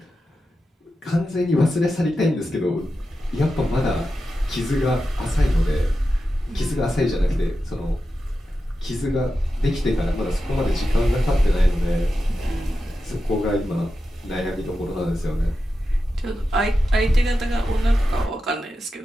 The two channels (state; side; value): normal; both; correlation 0.91